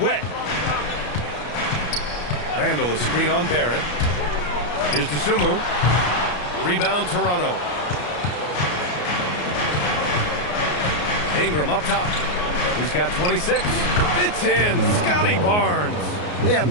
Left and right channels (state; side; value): late; right; 34 ms